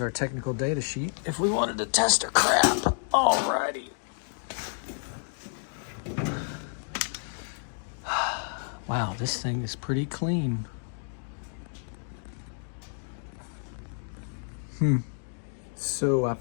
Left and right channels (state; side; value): silent; right; 58 dB below the other